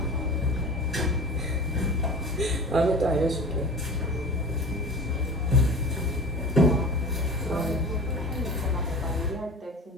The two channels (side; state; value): both; normal; correlation 0.36